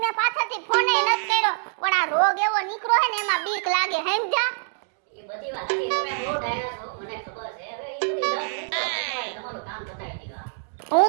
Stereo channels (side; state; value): left; silent; digital silence